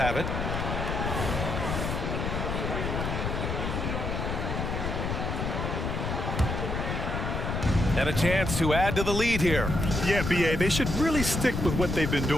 it. And a chance to add to the lead here. Yeah, BA, they should really stick with what they've been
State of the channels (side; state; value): left; noise; rumble, 2 dB below the sound